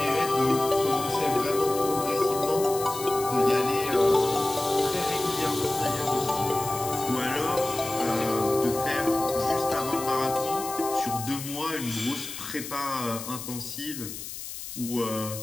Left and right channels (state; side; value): noise; left; hiss, 9 dB below the sound